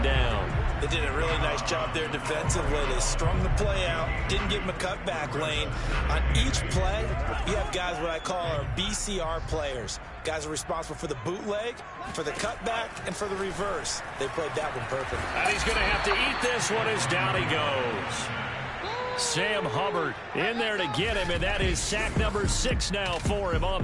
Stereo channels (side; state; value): both; identical; correlation 1.00